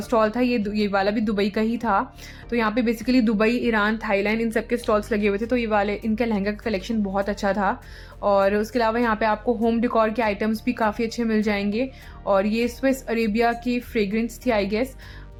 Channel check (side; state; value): both; identical; correlation 1.00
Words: था ये वाला भी दुबई का ही था। तो यहाँ पे बेसिकली दुबई, ईरान, थाईलैंड इन सब के स्टॉल्स लगे हुए थे। तो ये वाले इनका लहंगा का कलेक्शन बहुत अच्छा था। और उसके अलावा यहाँ पे आपको होम डेकोर के आइटम्स भी काफ़ी अच्छे मिल जाएंगे। और ये स्विस अरेबिया की फ्रेग्रेंस थी आई गेस।